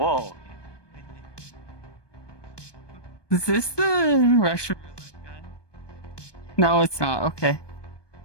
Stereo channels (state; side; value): late; right; 1.2 ms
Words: Is this the Russian? No, it's not. Okay.